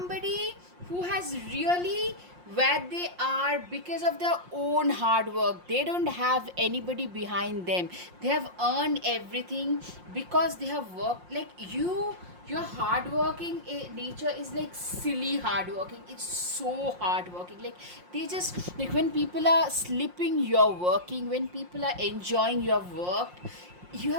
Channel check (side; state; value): left; late; 5.6 ms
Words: who has really where they are because of their own hard work. They don't have anybody behind them. They have earned everything because they have worked. Like you, your hardworking nature is like silly hardworking. It's so hardworking. Like they just, like when people are sleeping, you're working. When people are enjoying, you have worked. You